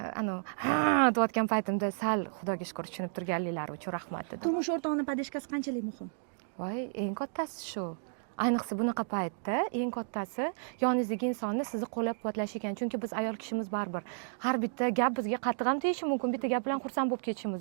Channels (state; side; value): silent; left; digital silence